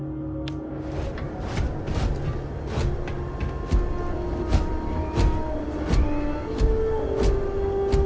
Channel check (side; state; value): both; identical; correlation 1.00